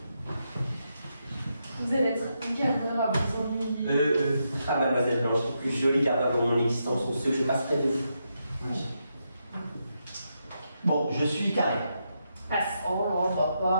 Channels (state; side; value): inverted; both; correlation -0.83